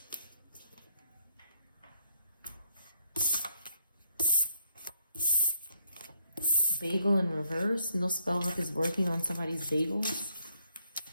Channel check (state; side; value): inverted; both; correlation -0.74